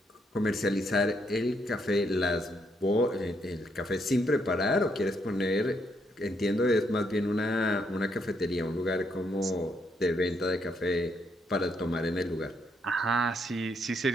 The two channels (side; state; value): both; normal; correlation 0.75